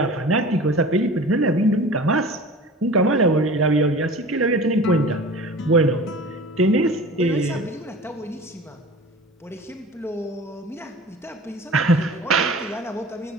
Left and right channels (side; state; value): both; normal; correlation 0.39